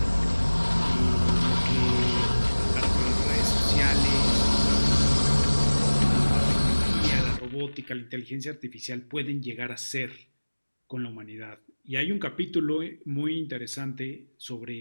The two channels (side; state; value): both; inverted; correlation -1.00